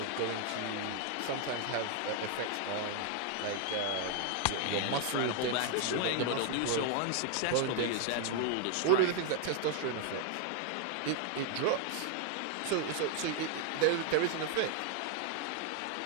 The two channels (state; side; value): different; both; correlation 0.00